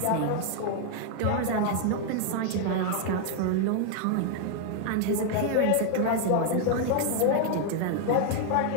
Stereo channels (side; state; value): both; different; correlation 0.00